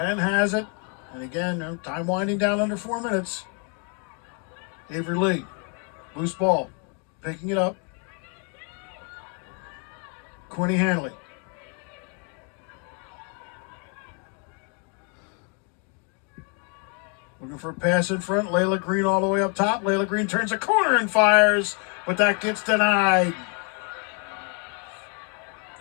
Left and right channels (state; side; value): quieter; right; 38.0 dB